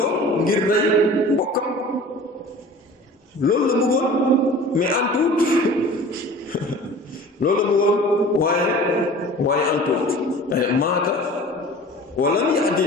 ngir rey mbokkam loolu la bëggoon mais antuut loolu la bëggoon waaye antuut maata wa lam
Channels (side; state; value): both; normal; correlation 0.42